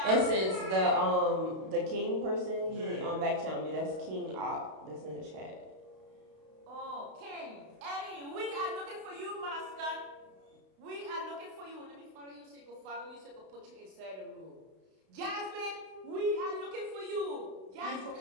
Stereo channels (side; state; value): left; late; 32 ms